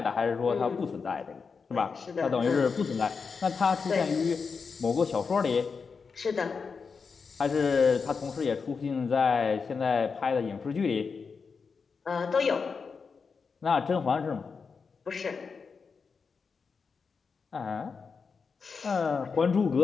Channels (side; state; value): right; quieter; 5.3 dB